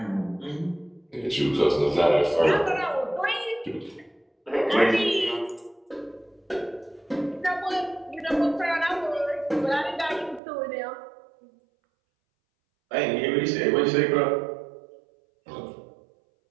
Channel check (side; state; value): left; drops out; at 10.4 s